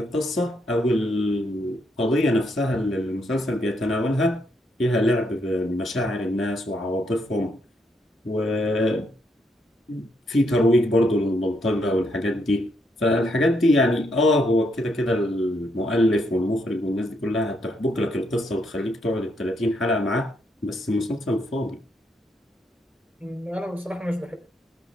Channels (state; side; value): normal; both; correlation 0.76